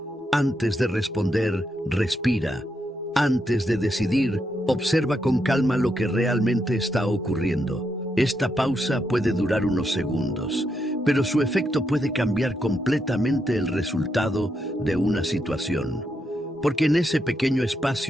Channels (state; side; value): normal; both; correlation 0.81